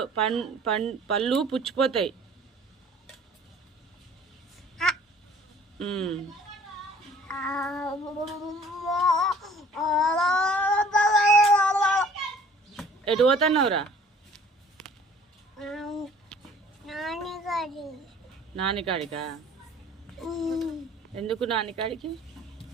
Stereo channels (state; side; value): normal; both; correlation 0.52